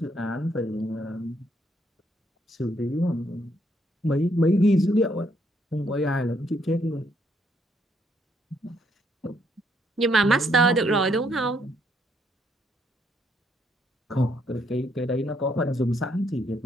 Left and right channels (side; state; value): both; normal; correlation 0.72